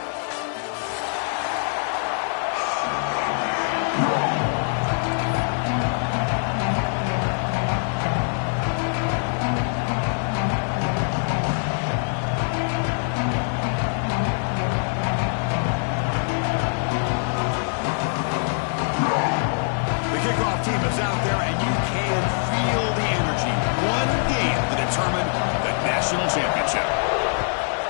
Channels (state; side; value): silent; right; 60 dB below the other